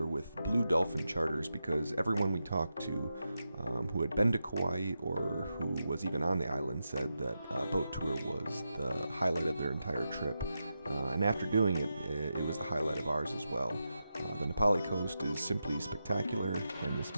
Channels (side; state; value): both; inverted; correlation -0.88